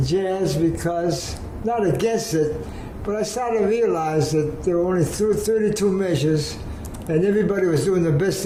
jazz because, not against it, but I started to realize that there were only 32 measures, and everybody was doing the best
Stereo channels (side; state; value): both; identical; correlation 1.00